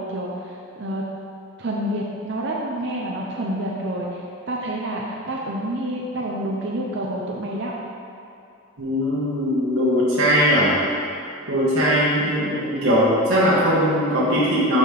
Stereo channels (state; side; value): normal; both; correlation 0.26